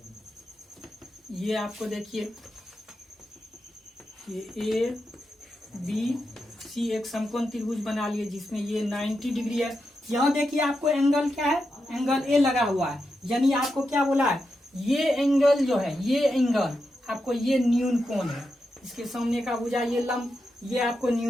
ये आपको देखिए ये ए बी सी एक समकोण त्रिभुज बना लिए, जिसमें ये 90 डिग्री है। यहाँ देखिए आपको एंगल क्या है? एंगल ए लगा हुआ है। यानी आपको क्या बोला है? ये एंगल जो है, ये एंगल आपको ये न्यून कोण है। इसके सामने का भुजा ये लंब, ये आपको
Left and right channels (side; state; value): both; normal; correlation 0.87